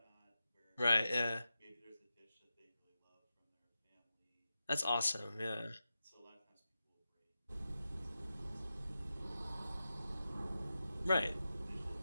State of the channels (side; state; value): both; inverted; correlation -0.92